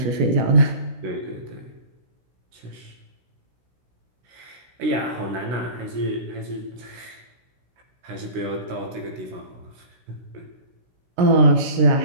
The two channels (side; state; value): left; late; 16 ms